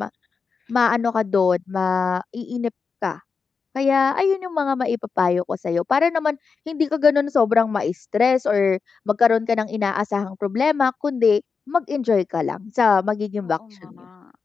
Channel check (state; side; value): quieter; right; 5.2 dB